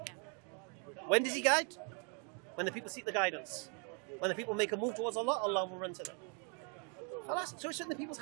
When does he guide? When the people seek the guidance. When the people make a move towards Allah, Allah will run to them. So it's in the people's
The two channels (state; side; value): quieter; left; 38.1 dB